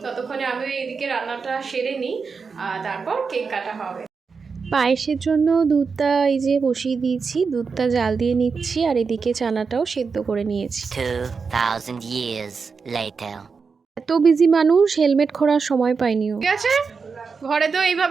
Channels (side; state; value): left; quieter; 5.2 dB